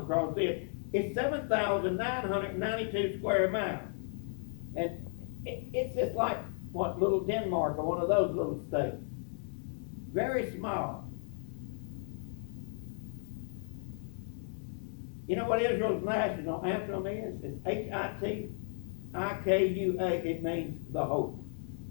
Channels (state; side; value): silent; right; digital silence